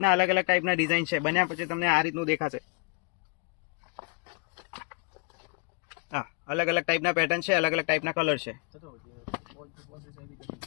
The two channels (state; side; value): quieter; right; 32.5 dB